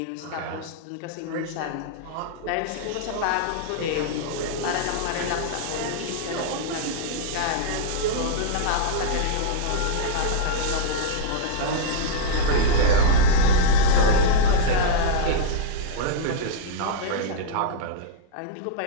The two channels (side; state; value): both; different; correlation -0.01